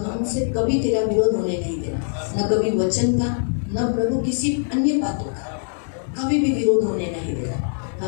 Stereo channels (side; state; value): right; silent; digital silence